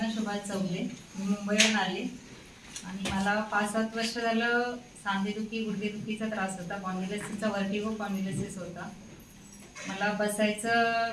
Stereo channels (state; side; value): identical; both; correlation 1.00